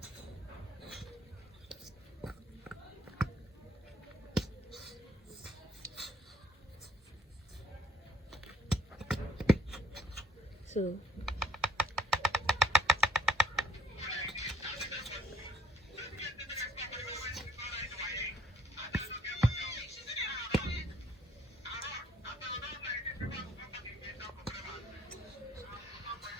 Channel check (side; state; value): both; normal; correlation 0.62